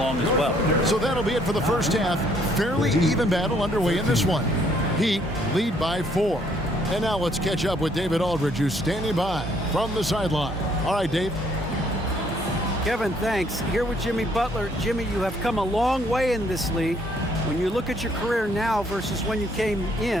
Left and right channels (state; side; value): normal; both; correlation 0.66